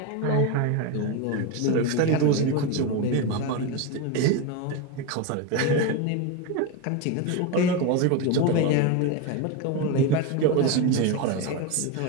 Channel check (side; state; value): both; different; correlation 0.04